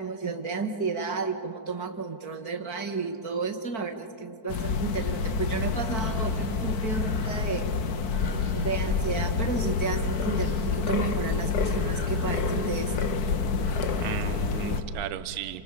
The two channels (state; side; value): late; right; 4.5 ms